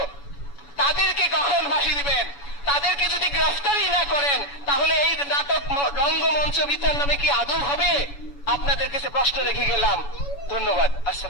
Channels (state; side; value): late; right; 7.0 ms